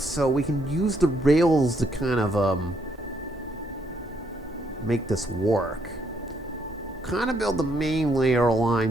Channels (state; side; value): normal; both; correlation 0.73